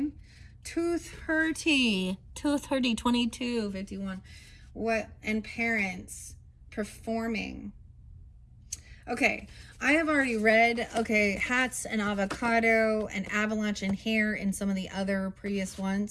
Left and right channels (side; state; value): both; identical; correlation 1.00